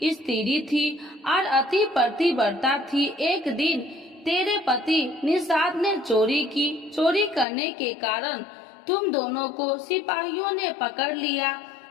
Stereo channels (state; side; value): drops out; right; at 7.5 s